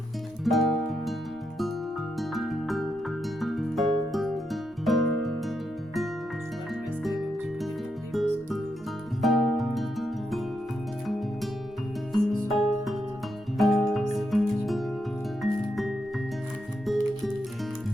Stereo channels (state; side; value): normal; both; correlation 0.82